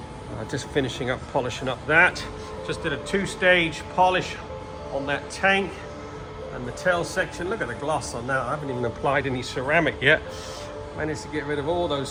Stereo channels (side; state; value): both; identical; correlation 1.00